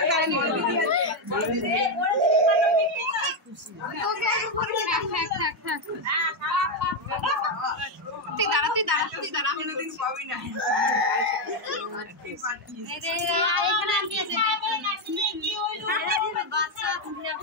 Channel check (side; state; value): both; normal; correlation 0.05